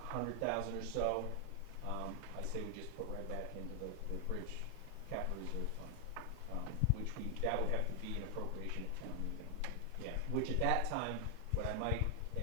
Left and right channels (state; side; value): different; both; correlation 0.00